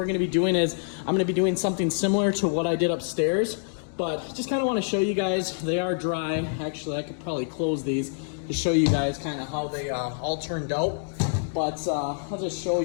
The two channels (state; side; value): silent; right; digital silence